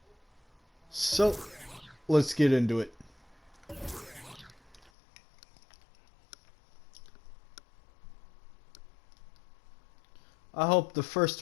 So, let's get into it. I hope the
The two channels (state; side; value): drops out; right; at 4.9 s